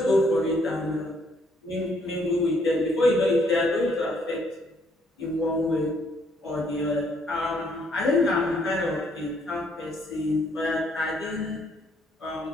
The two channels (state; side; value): normal; both; correlation 0.68